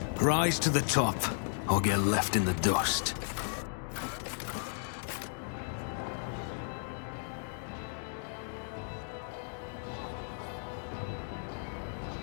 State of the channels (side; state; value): right; silent; digital silence